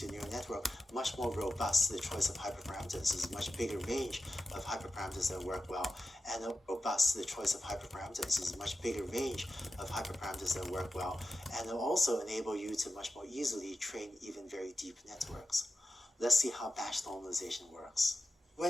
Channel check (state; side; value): normal; both; correlation 0.92